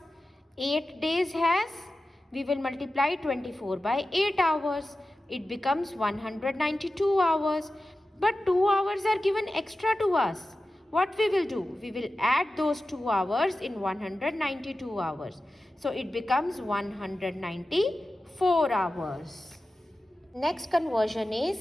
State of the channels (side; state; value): both; normal; correlation 0.94